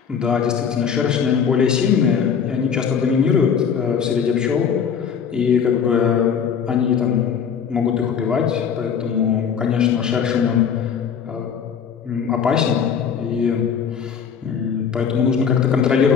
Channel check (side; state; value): right; quieter; 7.2 dB